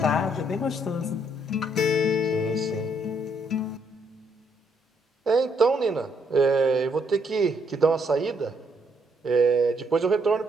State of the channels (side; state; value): both; normal; correlation 0.72